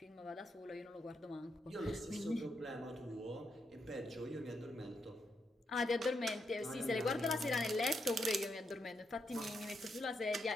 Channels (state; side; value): normal; both; correlation 0.81